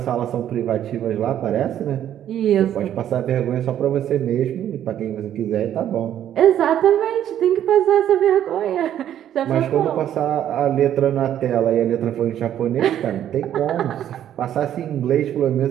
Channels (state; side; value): quieter; left; 10.8 dB